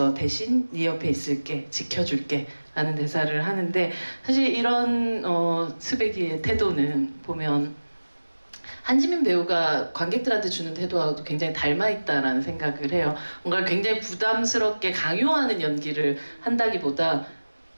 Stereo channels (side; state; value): both; inverted; correlation -1.00